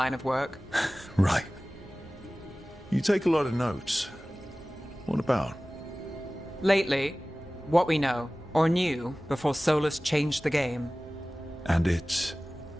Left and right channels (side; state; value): both; normal; correlation 0.98